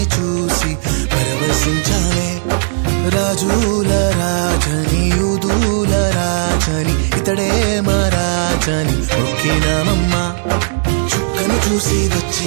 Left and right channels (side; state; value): left; silent; 69 dB below the other